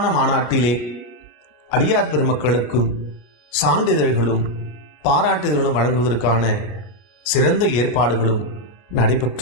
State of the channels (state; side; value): late; right; 33 ms